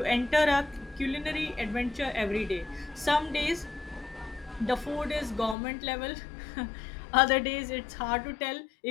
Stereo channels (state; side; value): drops out; right; at 5.6 s